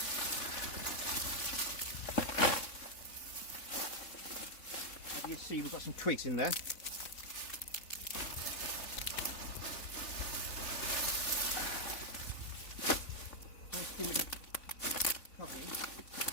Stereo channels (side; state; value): right; late; 3.8 ms